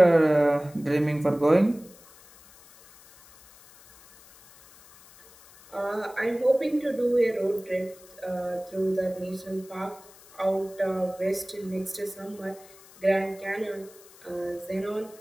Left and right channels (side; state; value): left; noise; hiss, 23 dB below the sound